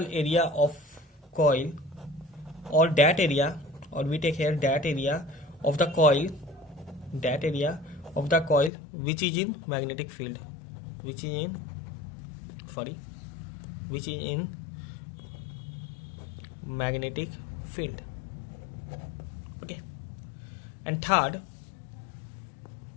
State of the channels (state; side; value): drops out; right; at 8.7 s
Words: of coil, or that area, or we take here that area of the coil, which is in magnetic field, which is in magnetic field. Okay, and third,